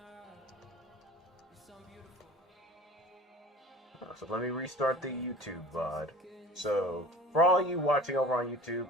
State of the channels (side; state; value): both; normal; correlation 0.42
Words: So let me restart the YouTube VOD. So, for all you watching over on YouTube,